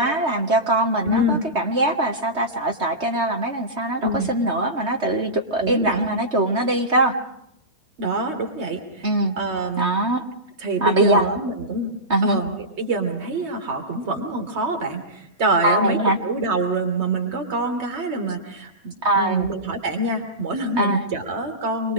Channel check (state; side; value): late; left; 3.2 ms